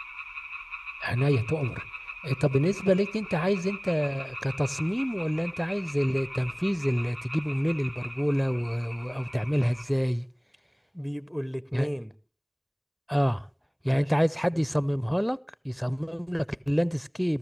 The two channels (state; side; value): identical; both; correlation 1.00